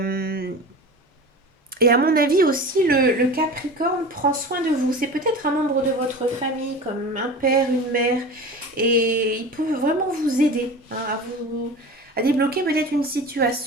et à mon avis aussi, le Capricorne prend soin de vous. C'est peut-être un membre de votre famille, comme un père, une mère, et il peut vraiment vous aider hein, à débloquer peut-être une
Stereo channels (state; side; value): normal; both; correlation 0.34